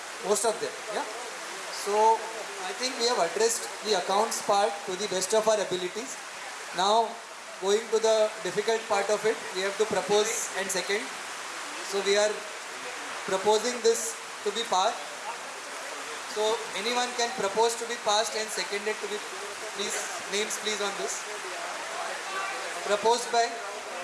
Most of them, yeah. So I think we have addressed the accounts part to the best of our abilities. Now going to the difficult part of it, we have to propose and second. So we are proposing this to be passed. So anyone can propose to be passed and seconded to be, please, names please on this. Proposed by?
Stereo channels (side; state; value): both; identical; correlation 1.00